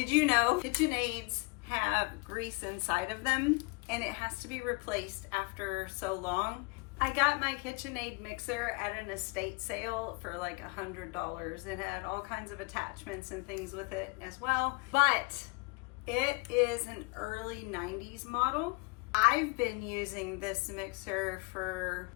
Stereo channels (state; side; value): quieter; right; 27.7 dB